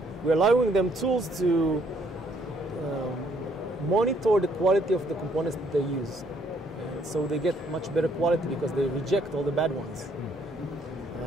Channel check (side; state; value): both; normal; correlation 0.67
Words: we're allowing them tools to monitor the quality of the components that they use. So they get much better quality because they reject all the bad ones.